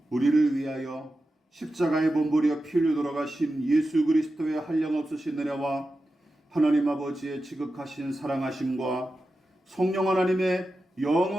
우리를 위하여 십자가에 몸부려 피 흘려 돌아가신 예수 그리스도의 한량없으신 은혜와 하나님 아버지의 지극하신 사랑하심과 성령 하나님의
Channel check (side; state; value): both; normal; correlation 0.92